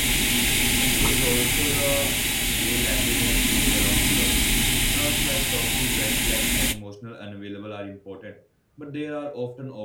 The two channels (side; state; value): both; identical; correlation 1.00